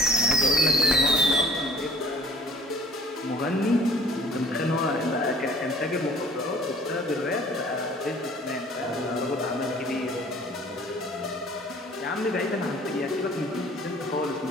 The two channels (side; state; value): both; normal; correlation 0.53